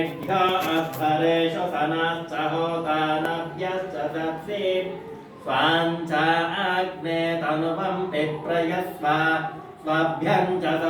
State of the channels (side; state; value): both; identical; correlation 1.00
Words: अध्वरेषु सनश्च होतानव्यश्च सत्सि स्वाञ्चाग्ने तनुवं पिप्रयस्व स्वभ्यं च